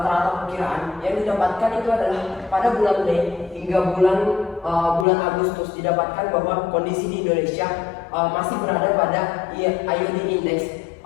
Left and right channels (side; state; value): right; drops out; at 5.1 s